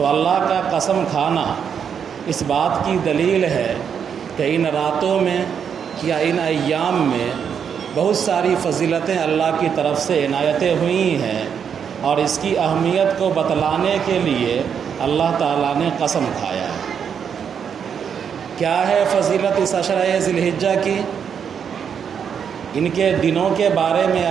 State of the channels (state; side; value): quieter; left; 7.5 dB